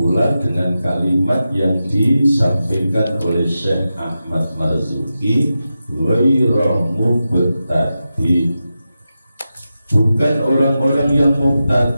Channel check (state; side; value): inverted; both; correlation -0.91